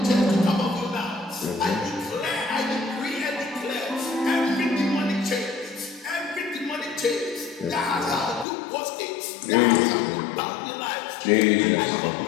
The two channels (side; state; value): right; drops out; at 8.5 s